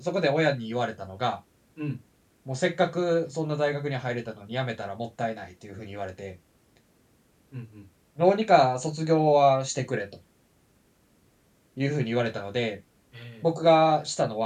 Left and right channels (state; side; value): identical; both; correlation 1.00